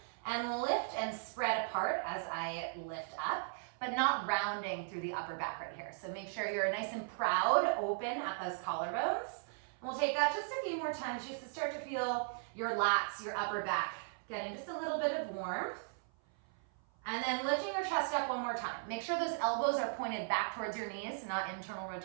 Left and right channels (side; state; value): left; silent; 53 dB below the other